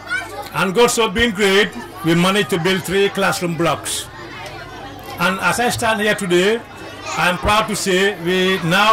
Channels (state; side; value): identical; both; correlation 1.00